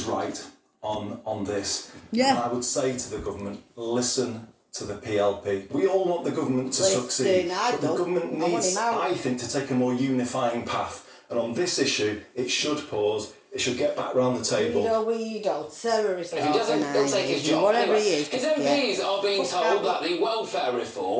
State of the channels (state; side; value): identical; both; correlation 1.00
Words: right on this. Yeah. And I would say to the government, listen to the PLP. We all want the government to succeed, but the government needs, I think, to take a more unifying path. And on this issue, it should pause. It should get back round the table. We don't. Terrorist If he doesn't, he'll take his job. Whatever anyway, he is. His MPs are being told that the welfare